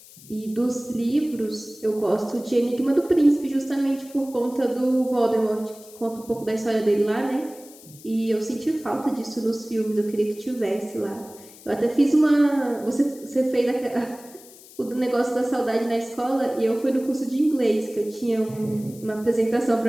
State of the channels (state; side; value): noise; left; hiss, 21 dB below the sound